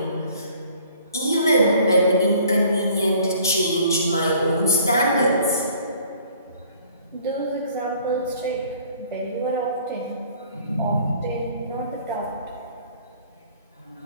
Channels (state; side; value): inverted; both; correlation -0.55